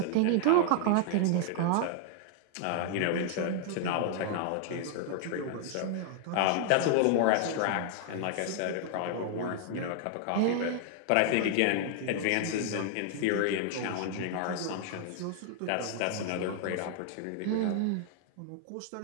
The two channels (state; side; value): different; both; correlation 0.00